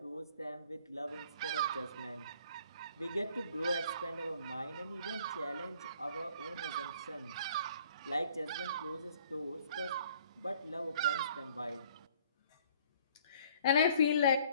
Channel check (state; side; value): inverted; both; correlation -0.57